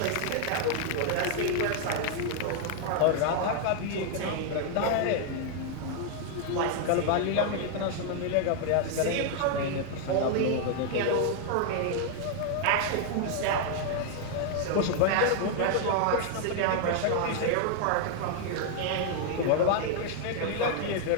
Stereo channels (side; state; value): both; different; correlation 0.00